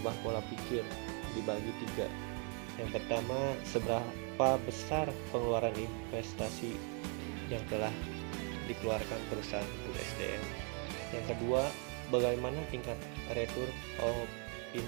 pola pikir dibagi 3. Yang pertama, seberapa besar pengeluaran investasi yang telah dikeluarkan perusahaan untuk SDM. Yang kedua, bagaimana tingkat return of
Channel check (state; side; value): quieter; left; 38.8 dB